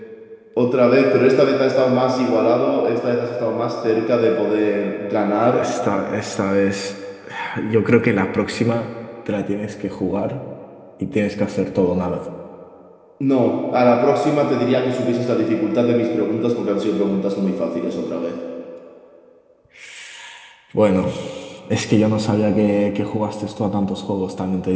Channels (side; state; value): both; identical; correlation 1.00